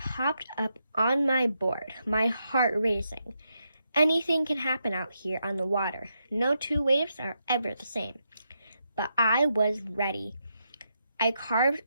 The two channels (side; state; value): both; inverted; correlation -0.82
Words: up on my board, my heart racing. Anything can happen out here on the water. No 2 waves are ever the same. But I was ready. I carved